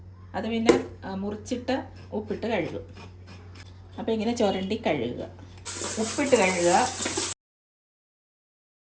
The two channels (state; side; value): identical; both; correlation 1.00